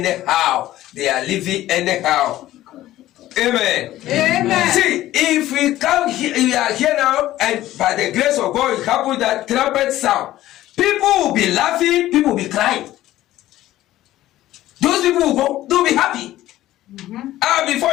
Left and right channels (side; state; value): right; quieter; 14.7 dB